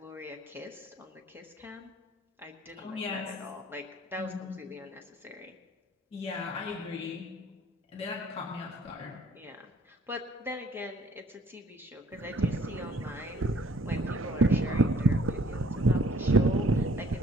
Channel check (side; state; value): both; normal; correlation 0.59